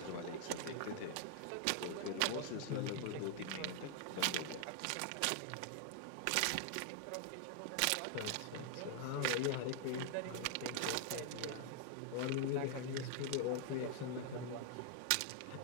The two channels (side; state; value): both; different; correlation 0.00